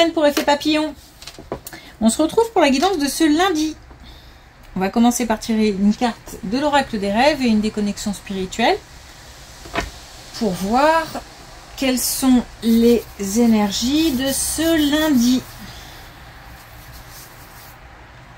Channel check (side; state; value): both; identical; correlation 1.00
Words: pour Effet Papillon. On se retrouve pour la guidance de ce lundi. On va commencer par tirer une carte de l'oracle des rêves et une déconnexion spirituelle pour voir quelles sont les énergies de ce lundi.